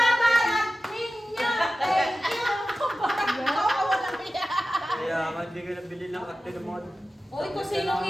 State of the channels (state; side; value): normal; both; correlation 0.94